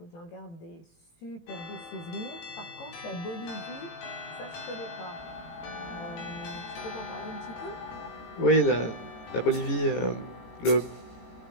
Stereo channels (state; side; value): late; right; 18 ms